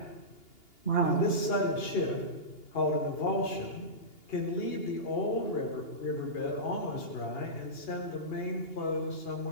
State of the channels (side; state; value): right; late; 2.8 ms